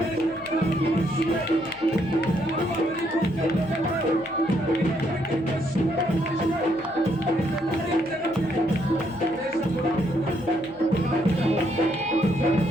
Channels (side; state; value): left; noise; hum, 26 dB below the sound